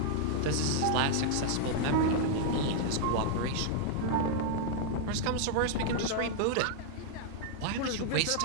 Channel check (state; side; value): different; both; correlation -0.01